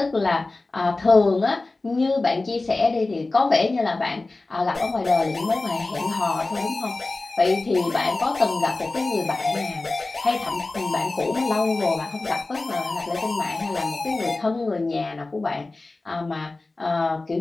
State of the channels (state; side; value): quieter; right; 3.2 dB